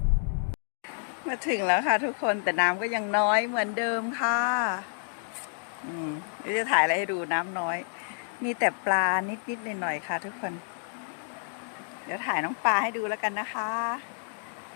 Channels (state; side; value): silent; right; 59 dB below the other